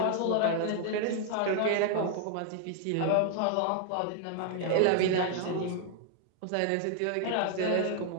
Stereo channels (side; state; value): both; different; correlation 0.00